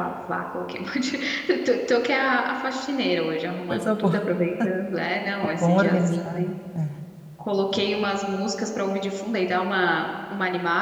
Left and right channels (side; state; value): both; identical; correlation 1.00